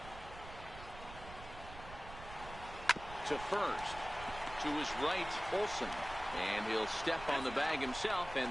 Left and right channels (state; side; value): noise; right; rumble, 13 dB below the sound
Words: To first. To his right, Olsen. And he'll step on the bag himself,